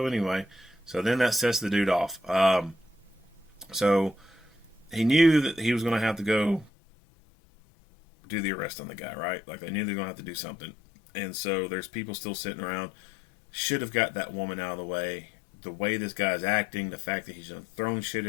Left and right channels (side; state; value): right; drops out; at 6.7 s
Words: anyway. So then that sets the dude off. So he knew that he was gonna have to go do the arrest on the guy, right? Like they knew they were gonna have to do something. And so there's people still sitting around. Should have got that woman out of the way. The way this guy's acting, the fact that he's throwing shit